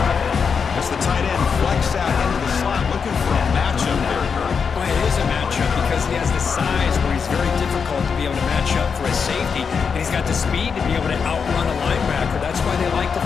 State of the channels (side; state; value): right; quieter; 6.0 dB